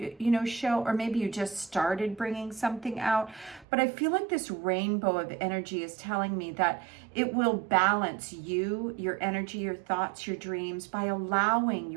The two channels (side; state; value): left; drops out; at 3.7 s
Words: or maybe you just started bringing something out. But I feel like this rainbow of energy is telling me that it will balance you, your energy, your thoughts, your dreams, by allowing